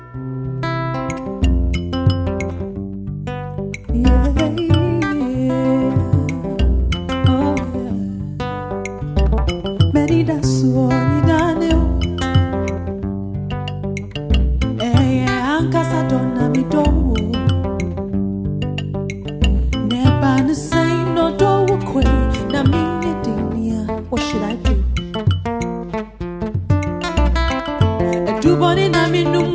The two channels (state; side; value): identical; both; correlation 1.00